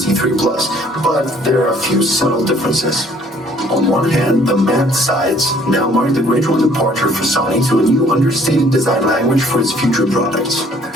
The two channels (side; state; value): both; normal; correlation 0.59